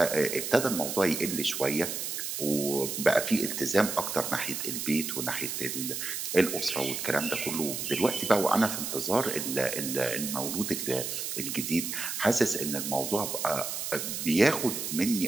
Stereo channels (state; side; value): noise; right; hiss, 4 dB below the sound